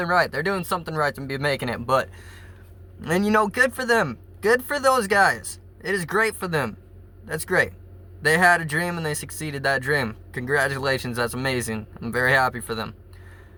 right. They're doing something right to be making it, but, and you know, good for them. Good for those guys. It is great for them. That's great. They had a dream and they succeeded that dream. Congratulations, that's amazing. I'm very happy for them.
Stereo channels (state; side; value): identical; both; correlation 1.00